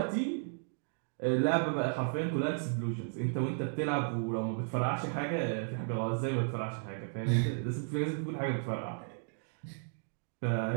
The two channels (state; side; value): silent; left; digital silence